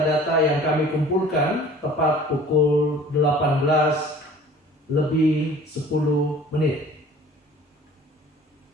yang kami kumpulkan tepat pukul 18:10.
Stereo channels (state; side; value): normal; both; correlation 0.47